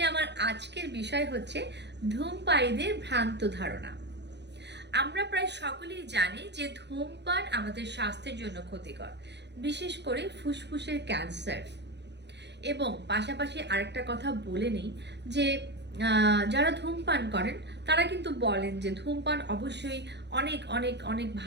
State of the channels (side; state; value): left; late; 0.50 ms